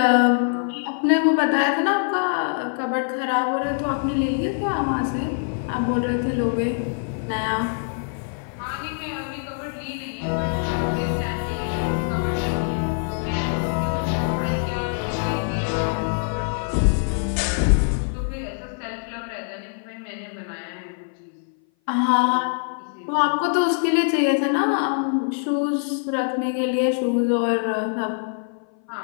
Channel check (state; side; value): silent; right; 58 dB below the other